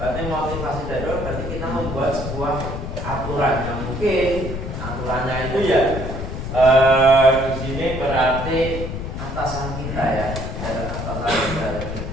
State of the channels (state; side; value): noise; left; rumble, 6 dB below the sound